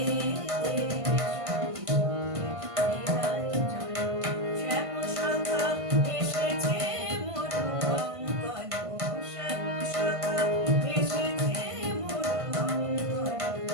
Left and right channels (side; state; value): left; late; 1.5 ms